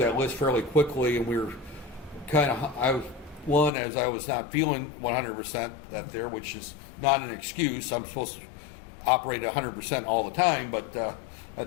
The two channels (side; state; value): right; drops out; at 3.7 s